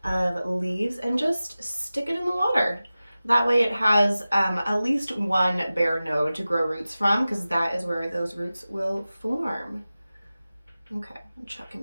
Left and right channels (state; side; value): inverted; both; correlation -0.96